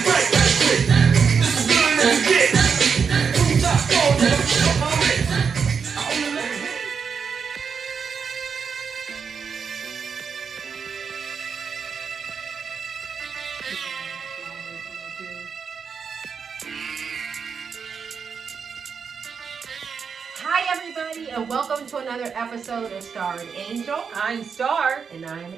everybody, and welcome to another episode of Star and Angel. I'm Star. And I'm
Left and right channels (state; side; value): quieter; left; 6.1 dB